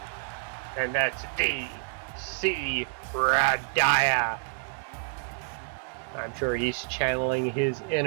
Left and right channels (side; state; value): left; silent; 59 dB below the other